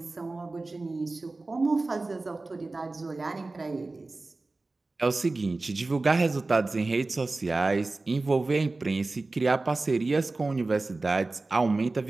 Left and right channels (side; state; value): left; quieter; 3.3 dB